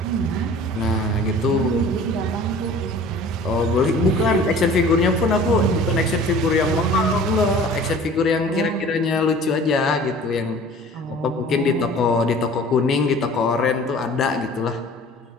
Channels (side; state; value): both; normal; correlation 0.46